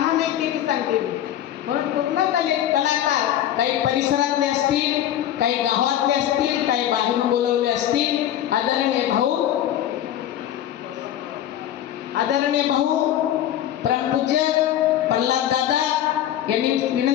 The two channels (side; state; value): right; quieter; 11.5 dB